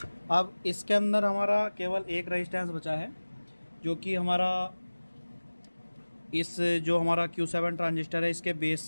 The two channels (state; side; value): inverted; both; correlation -1.00